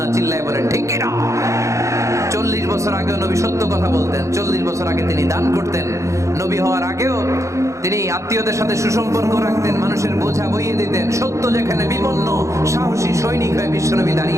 চিল্লায় বলেন ঠিক কিনা? 40 বছর আগেও নবী সত্য কথা বলতেন, 40 বছর আগে তিনি দান করতেন, নবী হওয়ার আগেও তিনি আত্মীয়দের সাথে সুসম্পর্ক রাখতেন, মানুষের বোঝা বইয়ে দিতেন, সত্য যেখানে বিপন্ন সাহসী সৈনিক হয়ে বিশ্বনবী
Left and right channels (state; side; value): late; left; 0.15 ms